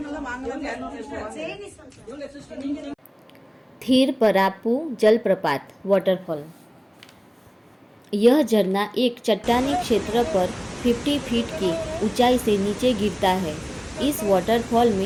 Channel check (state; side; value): identical; both; correlation 1.00